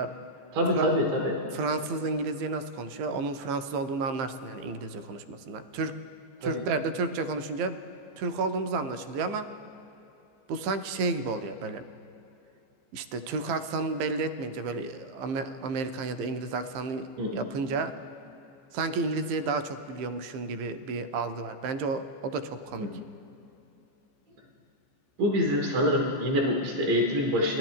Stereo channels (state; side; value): late; left; 14 ms